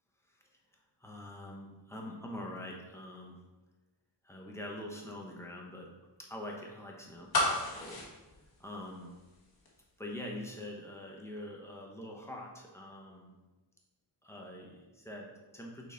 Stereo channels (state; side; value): normal; both; correlation 0.04